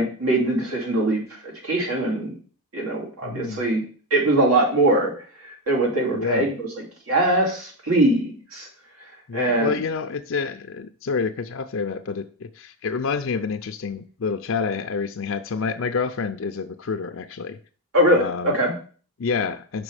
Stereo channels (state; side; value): normal; both; correlation 0.08